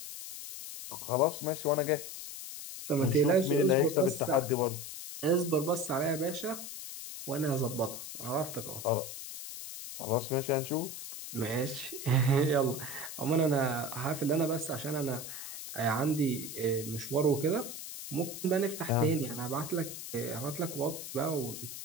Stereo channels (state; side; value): noise; left; hiss, 9 dB below the sound